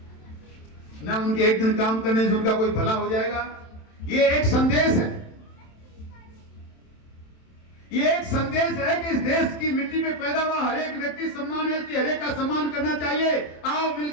ना उनके एक दिन काम करने से उनका कोई भला हो जाएगा। ये एक संदेश है, ये एक संदेश है कि इस देश की मिट्टी में पैदा हुआ हर एक व्यक्ति सम्मान है, इसलिए हर एक का सम्मान करना चाहिए। आओ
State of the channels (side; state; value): right; late; 27 ms